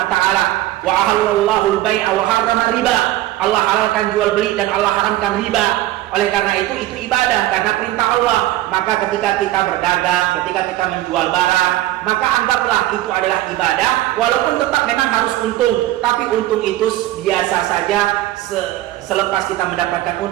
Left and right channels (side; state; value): left; quieter; 15.5 dB